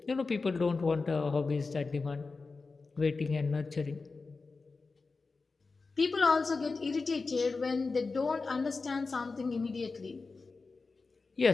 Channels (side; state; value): right; quieter; 4.1 dB